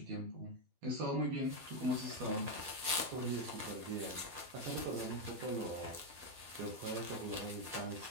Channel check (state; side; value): late; left; 12 ms